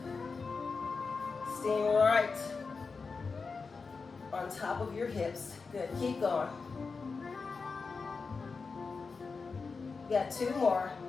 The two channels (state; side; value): quieter; right; 4.7 dB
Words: Staying right on top of your hips. Good, keep going. You got 2 more.